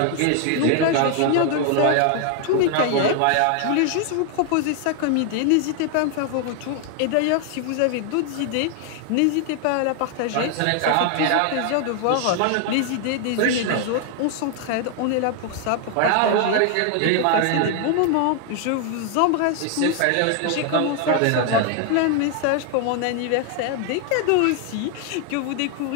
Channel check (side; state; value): both; different; correlation 0.00